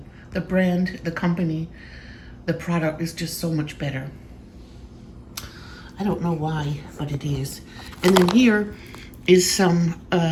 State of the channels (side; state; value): both; identical; correlation 1.00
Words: brand, the company, the product is just so much better. I don't know why, but it is. And then here is some